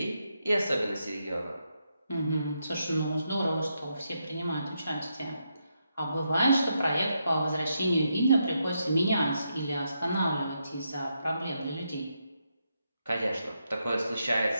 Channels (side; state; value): both; inverted; correlation -0.82